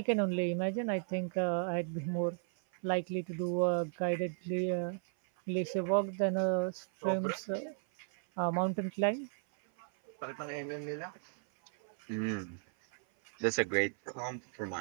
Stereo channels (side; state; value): left; silent; 54 dB below the other